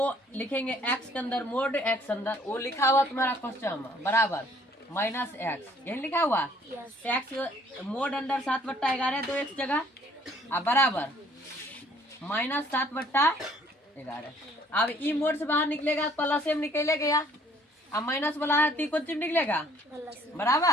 लिखेंगे x के अंदर मोड x अंदर, वो लिखा हुआ तुम्हारा क्वेश्चन में बराबर -x, यही लिखा हुआ x मोड अंडर 7/11 दो x जगह बराबर -7/11। अब ई मोड से बाहर निकलेगा प्लस में निकले गया, अब माइनस वाला है तो कौन चीज निकलेगा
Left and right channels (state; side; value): normal; both; correlation 0.59